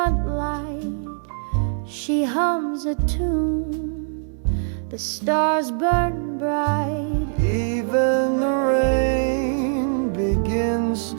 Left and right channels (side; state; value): left; silent; digital silence